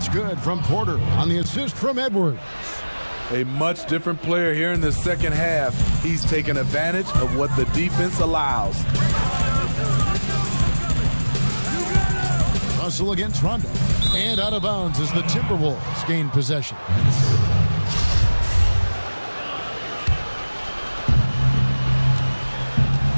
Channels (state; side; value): inverted; both; correlation -1.00